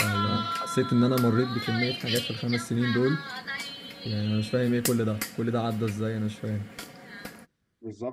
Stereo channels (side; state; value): both; identical; correlation 1.00